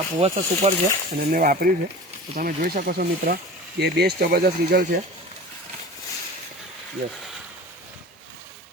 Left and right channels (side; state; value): both; normal; correlation 0.37